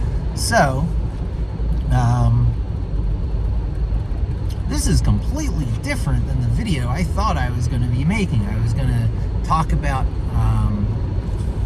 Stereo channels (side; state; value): both; identical; correlation 1.00